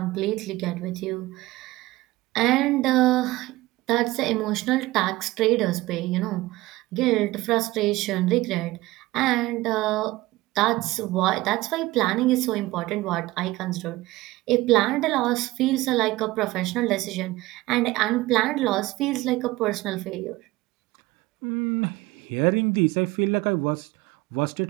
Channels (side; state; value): left; quieter; 18.8 dB